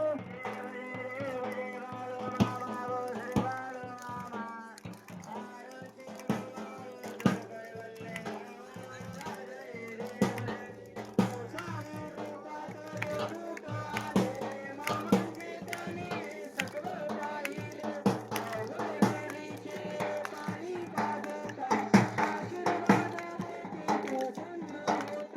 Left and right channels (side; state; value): both; identical; correlation 1.00